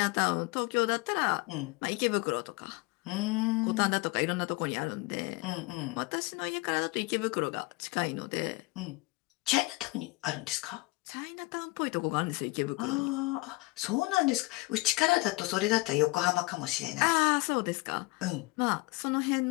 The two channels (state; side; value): quieter; right; 23.1 dB